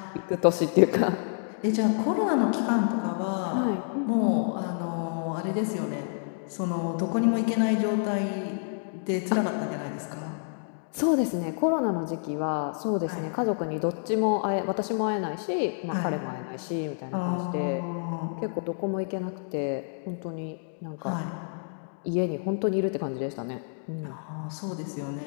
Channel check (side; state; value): right; silent; digital silence